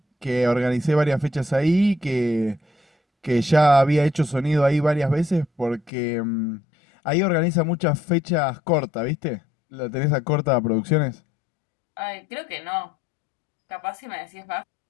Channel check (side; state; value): right; drops out; at 5.9 s